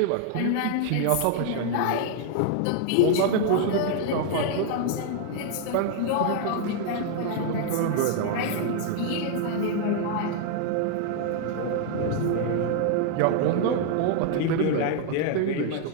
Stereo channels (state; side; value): different; both; correlation 0.00